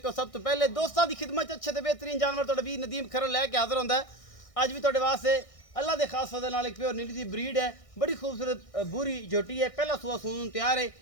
सब तो पहले दोस्तों की खिदमत अच्छे ते बेहतरीन जानवर तुहाडा वीर नदीम खरल लैके हाज़र होंदा है। अज भी तुहाडे वास्ते अल्लाह के खास फजल नाल एक प्योर नीली दी ब्रीड है, बड़ी खूबसूरत बूरी झोटी है, पहला सूआ सून तैयार है।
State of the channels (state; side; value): late; right; 1.6 ms